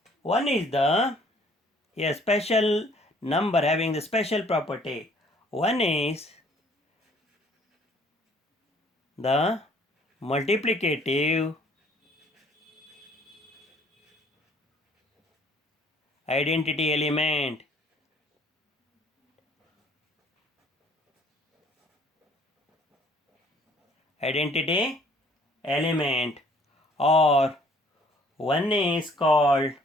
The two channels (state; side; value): normal; both; correlation 0.59